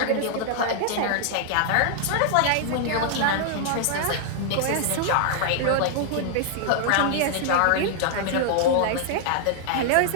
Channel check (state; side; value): different; both; correlation 0.00